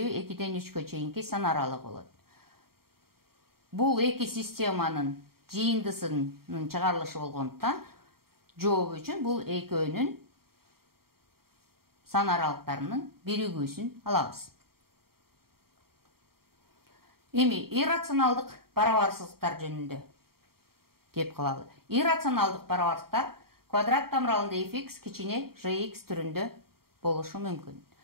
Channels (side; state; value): left; late; 0.94 ms